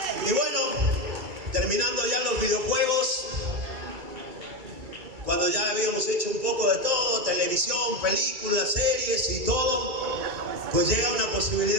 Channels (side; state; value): left; late; 2.3 ms